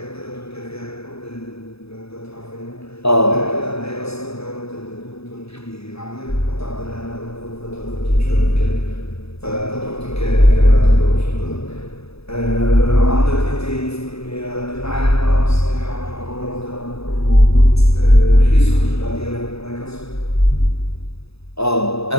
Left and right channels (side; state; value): right; late; 0.78 ms